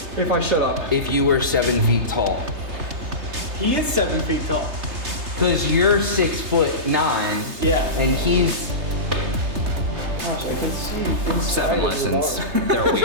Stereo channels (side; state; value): left; late; 3.3 ms